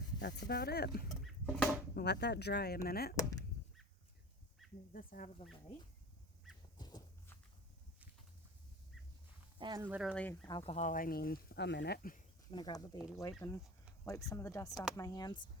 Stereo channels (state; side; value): normal; both; correlation 0.34